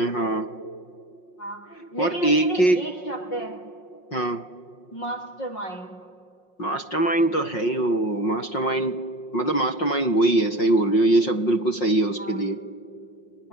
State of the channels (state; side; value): late; right; 5.6 ms